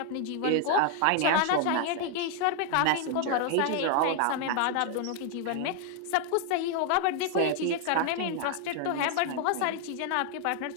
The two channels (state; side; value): different; both; correlation 0.00